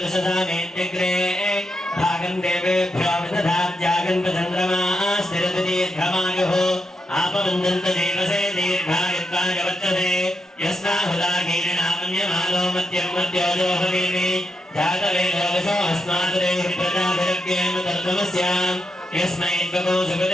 భాగం దేవేభ్యో విదధాత్యాగం చంద్రమా స్థిరతి దీర్ఘమాయుః. ఆపవందంత దేవసే దీర్ఘాయుత్వాయ వర్తతే यस्माहुदाकीर्णामन्यमानो मध्यं मध्योजो भवेमि जातवेदो वशो अस्मादुरेहि प्रजाभिरग्येम तर्तमस्याम् यस्मै त्वगो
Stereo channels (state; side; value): normal; both; correlation 0.83